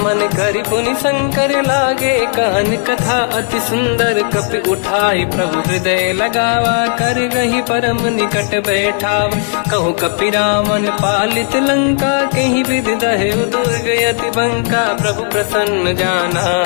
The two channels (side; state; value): right; silent; 56 dB below the other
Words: मन करि पुनि शंकर लागे, कान कथा अति सुंदर, कपि उठाई प्रभु हृदय लगावा, कर गही परम निकट बैठावा, कहु कपि रावण पालित लंका, कहीं विधि दहे उदुर्ग यति बंका, प्रभु प्रसन्न जाना